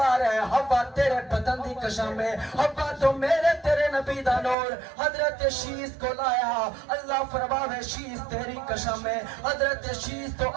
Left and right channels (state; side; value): drops out; left; at 4.5 s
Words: رہا ہے حوا تیرے بدن دی قسم ہے حوا تو میرے تیرے نبی دا نور حضرت شیش کو لایا اللہ فرماوے شیش تیری قسم ہے حضرت شیش تو